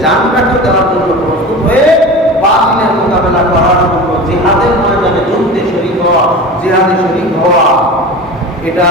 জানটাকে দেওয়ার জন্য প্রস্তুত হয়ে বাতিলের মোকাবেলা করার জন্য জিহাদের ময়দানে যুদ্ধে শরীক হওয়া, জিহাদে শরীক হওয়া, এটা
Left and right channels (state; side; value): normal; both; correlation 0.32